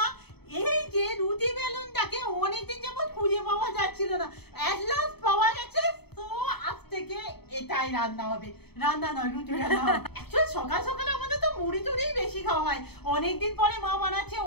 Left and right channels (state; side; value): late; right; 0.97 ms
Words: এই যে রুটি বেলুনটাকে অনেকদিন যাবত খুঁজে পাওয়া যাচ্ছিল না, এট লাস্ট পাওয়া গেছে। তো আজ থেকে এটাই রান্না হবে, রান্না নয় রুটি রান্না হবে। অ্যাকচুয়ালি সকাল সকালে আমাদের তো মুড়ি টুড়ি বেশি খাওয়া হয়, অনেকদিন পরে মা বানাচ্ছে